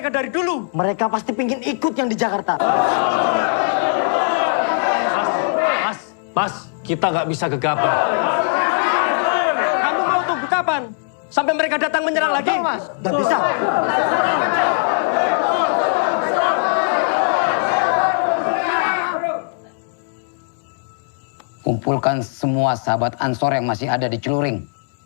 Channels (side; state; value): right; silent; digital silence